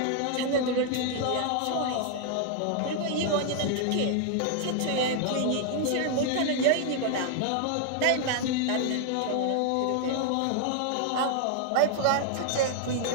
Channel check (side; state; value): both; different; correlation 0.00